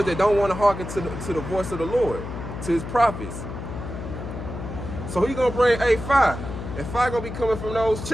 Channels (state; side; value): noise; left; hum, 8 dB below the sound